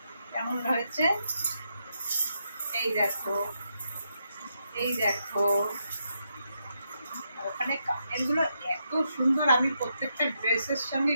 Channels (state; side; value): inverted; both; correlation -0.81